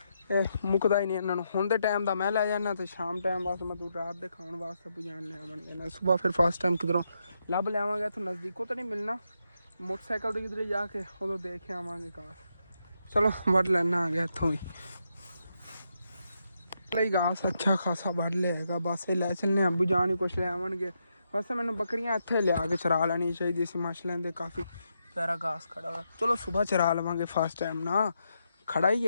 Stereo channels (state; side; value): inverted; both; correlation -0.82